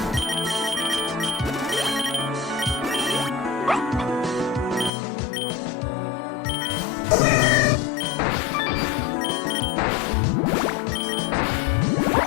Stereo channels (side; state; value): right; drops out; at 4.9 s